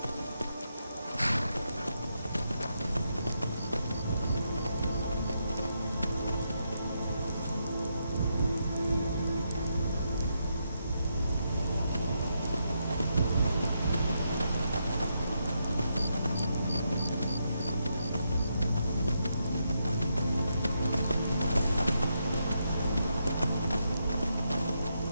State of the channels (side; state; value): both; inverted; correlation -0.81